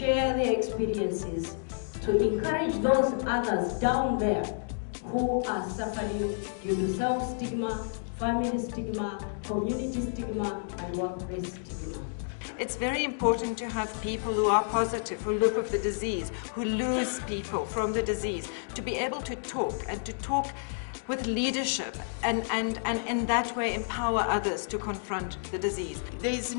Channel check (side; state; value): right; silent; digital silence